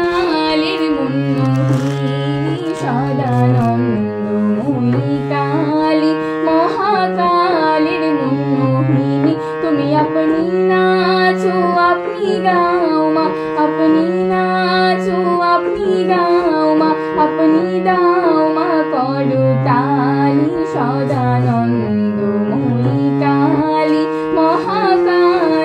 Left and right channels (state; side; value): identical; both; correlation 1.00